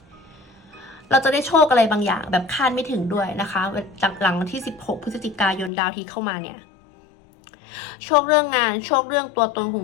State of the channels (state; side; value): drops out; right; at 5.7 s